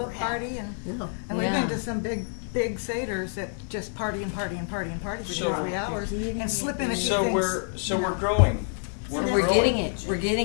we're having. party and Yeah. we've been Yeah. to some big Seders that just party and party and party and party for 2 or So- 3 hours and slip in a few So things. we're growing. We're growing. getting it, we're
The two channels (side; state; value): right; silent; 58 dB below the other